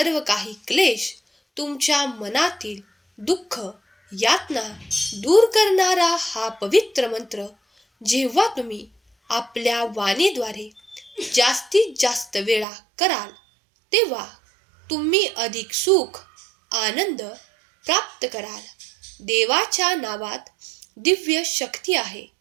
काही क्लेश, तुमच्या मनातील दुःख, यातना दूर करणारा हा पवित्र मंत्र जेव्हा तुम्ही आपल्या वाणीद्वारे जास्तीत जास्त वेळा कराल तेव्हा तुम्ही अधिक सुख, आनंद प्राप्त कराल. देवाच्या नावात दिव्य शक्ती आहे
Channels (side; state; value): left; drops out; at 12.7 s